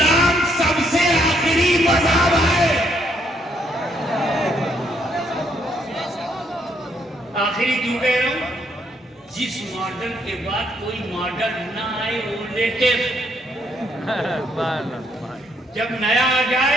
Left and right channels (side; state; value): both; normal; correlation 0.72